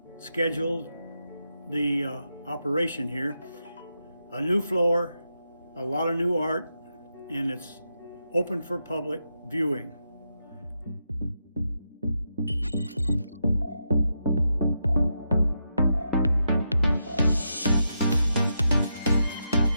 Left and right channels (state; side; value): inverted; both; correlation -0.84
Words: the operation here. A new floor, a lot of new art, and it's open for public viewing.